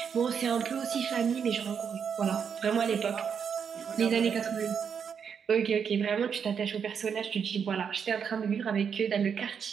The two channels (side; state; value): left; quieter; 7.0 dB